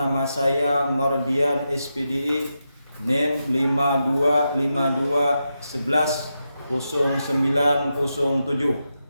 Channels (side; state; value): both; inverted; correlation -0.87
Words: saya Mardian SPDI, NIM 5252110907,